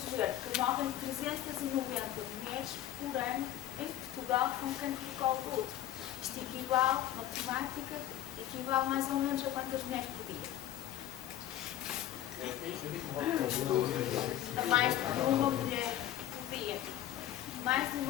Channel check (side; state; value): right; quieter; 12.5 dB